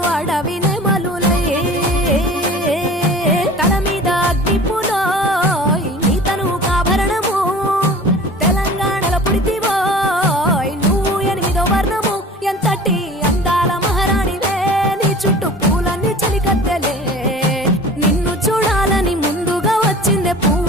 అడవి నెమలులై తల మీద అగ్నిపులో నీ తను కాభరణము తెలంగాణలో పుడితివో నువ్వు 8వ వర్ణము ఎంతటి అందాల మహారాణివే నీ చుట్టూ పూలన్నీ చలికత్తెలే నిన్ను చూడాలని ముందుగా వచ్చిందే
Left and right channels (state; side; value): normal; both; correlation 0.42